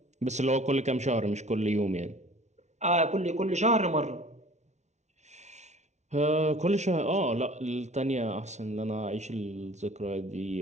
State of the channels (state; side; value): late; left; 0.33 ms